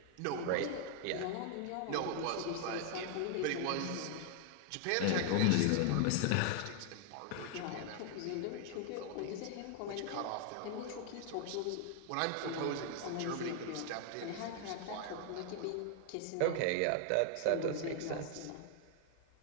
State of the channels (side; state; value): both; different; correlation 0.00